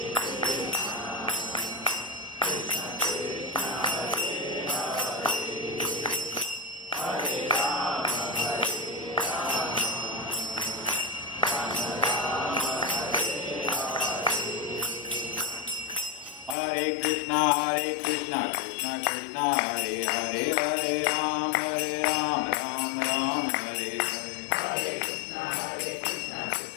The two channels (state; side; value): drops out; right; at 16.6 s